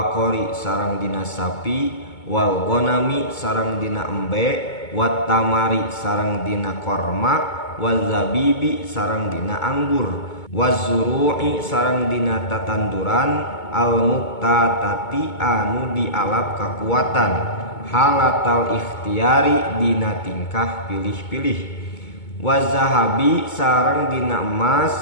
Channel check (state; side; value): late; right; 2.2 ms